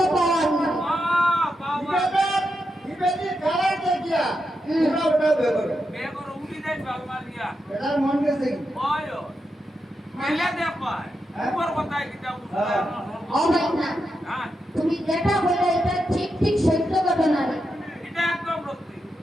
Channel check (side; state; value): both; normal; correlation 0.86